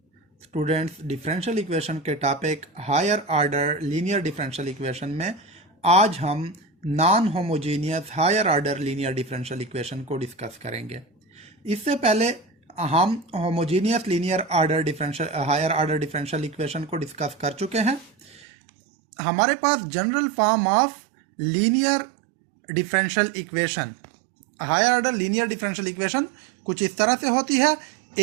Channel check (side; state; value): left; drops out; at 18.4 s